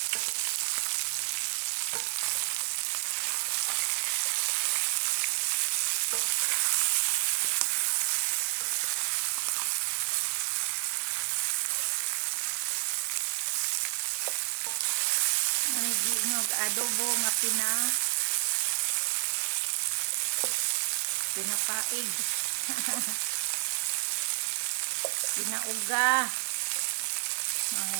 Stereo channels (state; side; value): silent; left; 58 dB below the other